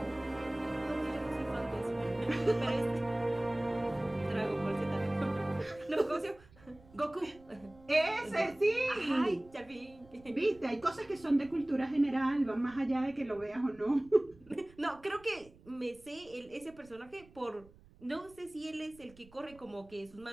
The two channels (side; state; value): right; noise; rumble, 25 dB below the sound